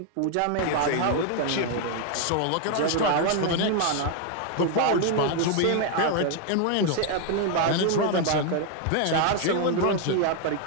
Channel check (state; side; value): different; both; correlation 0.00